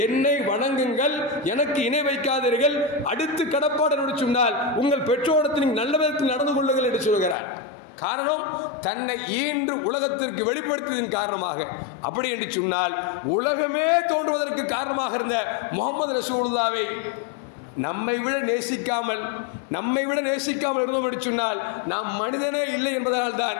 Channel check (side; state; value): right; drops out; at 7.4 s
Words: என்னை வணங்குங்கள், எனக்கு இணை வைக்காதீர்கள், அடுத்து கடப்பாடு என்று சொன்னால் உங்கள் பெற்றோரத்தில் நீங்கள் நல்ல விதத்தில் நடந்து கொள்ளுங்கள் என்று சொல்கிறார். காரணம், தன்னை ஈன்று உலகத்திற்கு வெளிப்படுத்தியதன் காரணமாக. அப்படி என்று சொன்னால் உலகமே தோன்றுவதற்கு காரணமாக இருந்த முஹம்மது ரசூலுல்லாஹ்வை நம்மை விட நேசிக்காமல் இருந்தோம் என்று சொன்னால் நாம் மனிதனே இல்லை என்பதனால் தான்